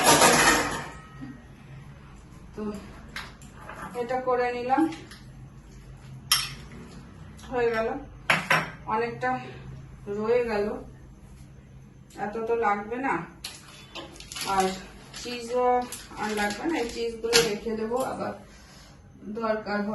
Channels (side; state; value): both; identical; correlation 1.00